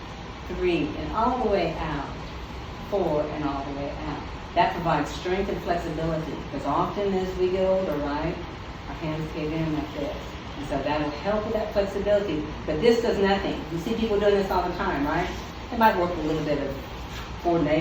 3, and all the way out. 4, and all the way out. That provides strength and flexibility, because often as we get older, right, our hands cave in like this. And so that'll help with that flexibility. But this does nothing. You see people doing this all the time, right? It might work a little bit of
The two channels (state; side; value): identical; both; correlation 1.00